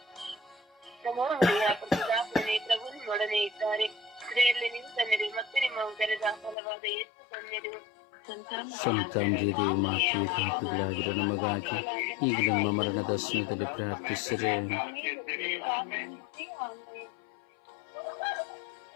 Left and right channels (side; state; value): right; drops out; at 6.6 s